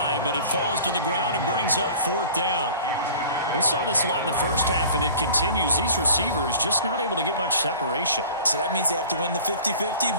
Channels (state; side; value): inverted; both; correlation -0.44